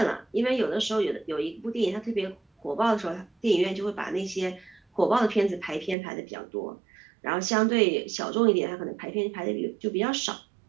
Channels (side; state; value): left; drops out; at 6.0 s